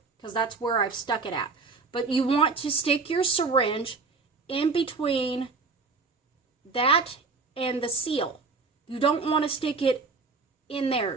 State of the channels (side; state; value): left; quieter; 4.3 dB